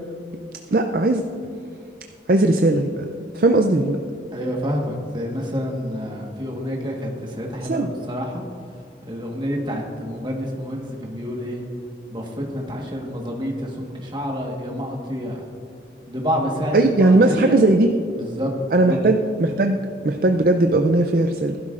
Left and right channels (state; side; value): normal; both; correlation 0.55